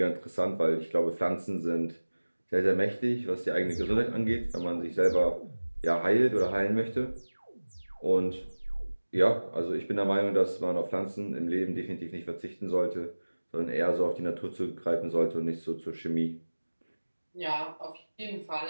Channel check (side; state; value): both; inverted; correlation -1.00